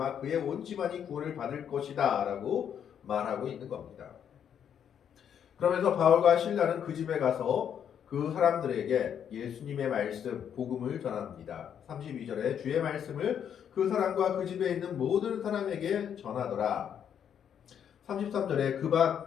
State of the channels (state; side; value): quieter; right; 8.7 dB